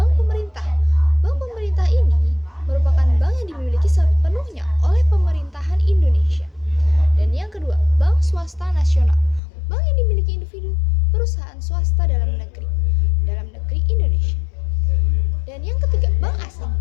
pemerintah. Bank pemerintah ini merupakan bank yang dimiliki sepenuhnya oleh pemerintahan Indonesia. Dan yang kedua, bank swasta nasional. Bank yang dimiliki individu, perusahaan swasta dalam negeri Indonesia. Dan yang ketiga, bank asing.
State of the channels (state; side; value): drops out; right; at 9.4 s